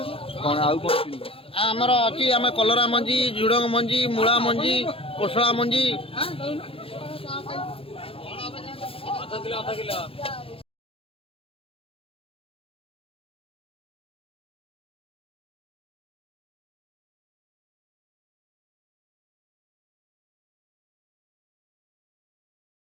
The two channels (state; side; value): late; right; 0.27 ms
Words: कौन आमर अच्छी आम कलरा मंजी झुड़ंग मंजी मूला मंजी कोसला मंजी